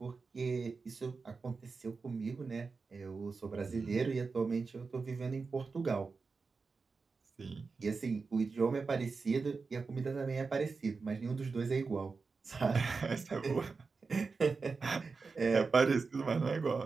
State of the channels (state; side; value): quieter; left; 4.5 dB